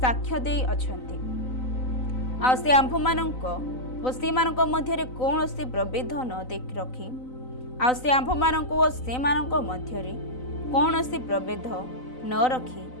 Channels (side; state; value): right; late; 3.9 ms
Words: ଦେଇ ଅଛନ୍ତି। ଆଉ ସେ ଆମ୍ଭମାନଙ୍କ ଓ ସେମାନଙ୍କ ମଧ୍ୟରେ କୌଣସି ପ୍ରଭେଦ ନ ରଖି ଆଉ ସେ ଆମ୍ଭମାନଙ୍କୁ ଓ ସେମାନଙ୍କ ମଧ୍ୟରେ କୌଣସି ପ୍ରଭେଦ ନ ରଖି